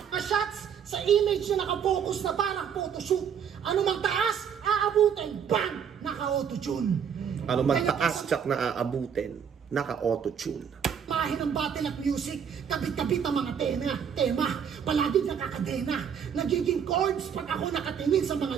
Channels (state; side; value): quieter; left; 7.7 dB